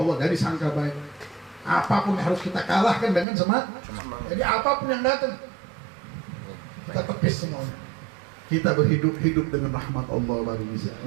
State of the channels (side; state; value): left; drops out; at 3.2 s